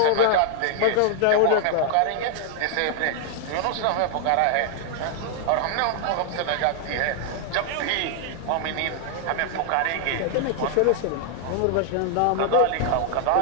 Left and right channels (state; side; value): different; both; correlation 0.00